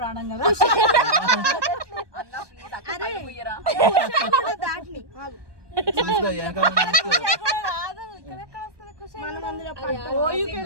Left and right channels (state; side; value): late; left; 1.2 ms